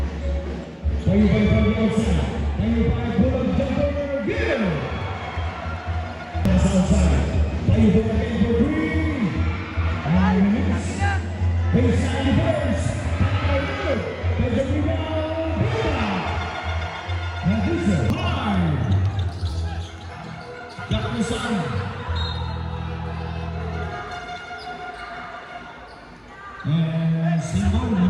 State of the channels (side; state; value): both; identical; correlation 1.00